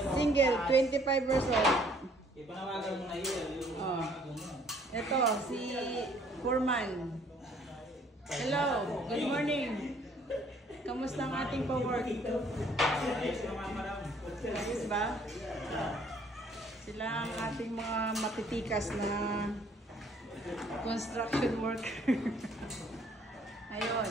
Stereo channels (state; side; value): normal; both; correlation 0.61